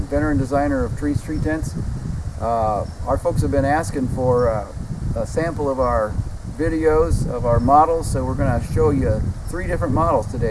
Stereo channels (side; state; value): both; identical; correlation 1.00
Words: and designer of Treez tree tents. Our folks have been asking for a sample of our videos of our models, so we're going to show you 3 different models